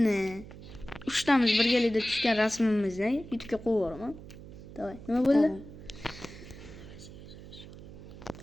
3 tamiz birgalikda tushgan rasmimizni YouTube'ga qo'yib yuboraman. Davay, nima bo'ldi?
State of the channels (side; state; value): right; noise; hum, 15 dB below the sound